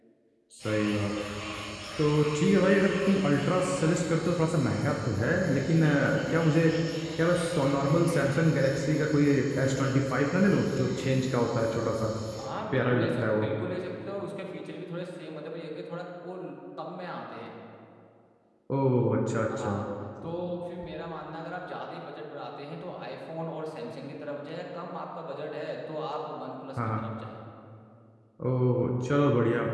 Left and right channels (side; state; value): both; identical; correlation 1.00